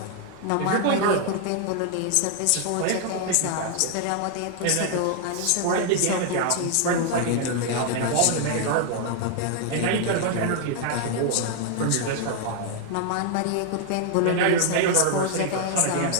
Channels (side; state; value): both; different; correlation 0.00